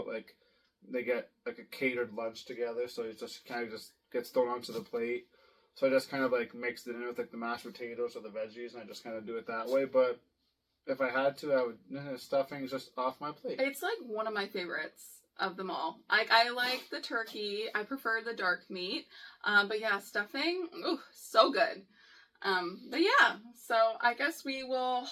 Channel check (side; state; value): both; identical; correlation 1.00